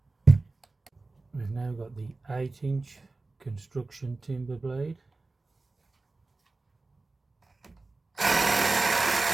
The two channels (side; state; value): left; quieter; 3.4 dB